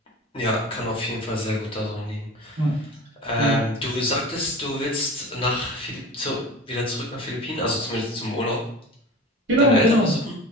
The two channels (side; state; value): both; normal; correlation 0.35